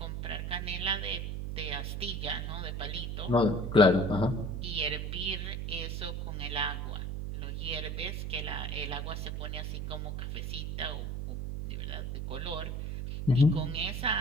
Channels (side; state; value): right; noise; hum, 3 dB below the sound